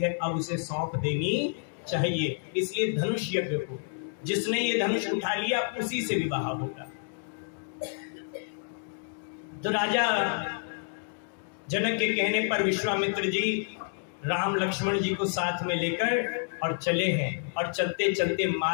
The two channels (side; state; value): right; silent; 58 dB below the other